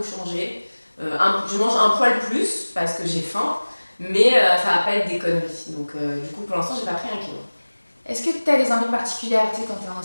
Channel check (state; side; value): inverted; both; correlation -1.00